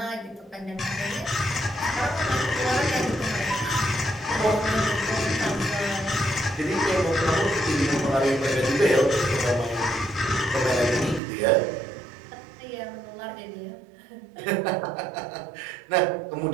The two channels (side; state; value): left; drops out; at 11.2 s